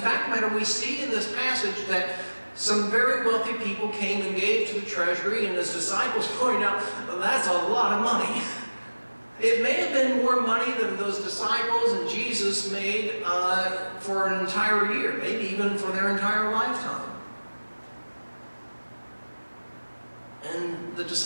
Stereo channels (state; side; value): inverted; both; correlation -1.00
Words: fact, we see in this passage that some very wealthy people came and gave to the treasury, and his disciples pointed out, that's a lot of money. It may have been more money than those disciples and Jesus made for an entire year, maybe even for their entire lifetime. And the